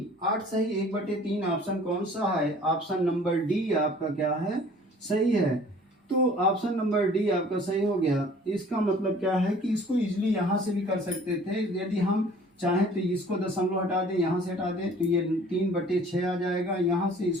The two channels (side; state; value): both; normal; correlation 0.51